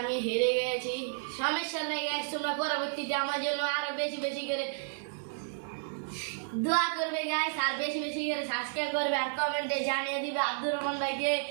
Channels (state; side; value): silent; left; digital silence